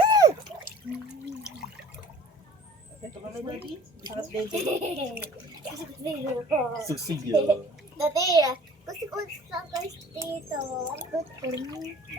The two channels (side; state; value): both; normal; correlation 0.49